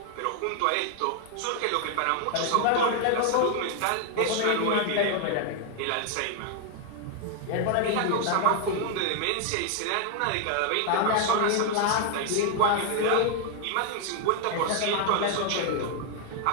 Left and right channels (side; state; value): both; different; correlation 0.00